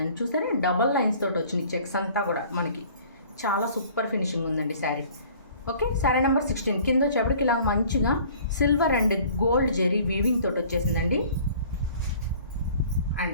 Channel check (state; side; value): inverted; both; correlation -0.51